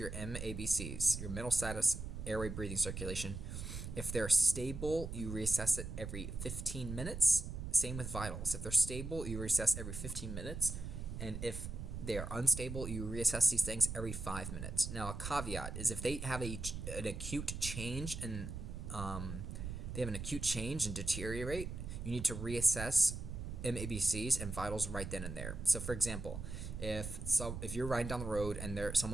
MABCs, your mental status, airway, breathing, circulation. If they're stable, you reassess it every 15 minutes. Same with vitals. If they're stable, you reassess every 15 minutes. And if they are unstable, you reassess these things every 5 minutes. Now, a caveat is if they have an acute change and deteriorate, you need to reassess MABCs and vitals right then and there. So, for example, if you're riding down the road and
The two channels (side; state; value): right; noise; rumble, 7 dB below the sound